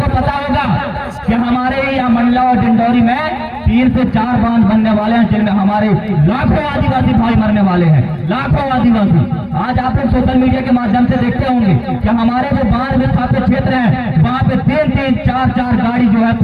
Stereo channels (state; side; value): identical; both; correlation 1.00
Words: को पता होगा कि हमारे यहाँ मंडला और डिंडौरी में 3 से 4 बांध बनने वाले हैं, जिनमें हमारे लाखों आदिवासी भाई मरने वाले हैं, लाखों आदिवासी। आज आप लोग सोशल मीडिया के माध्यम से देखते होंगे कि हमारे जो बांध विस्थापित क्षेत्र हैं वहां पे 3-3, 4-4 गाड़ी जो है